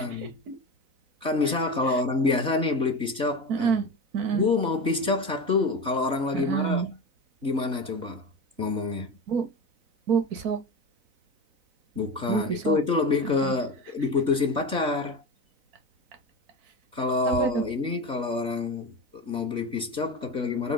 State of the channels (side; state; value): left; late; 4.0 ms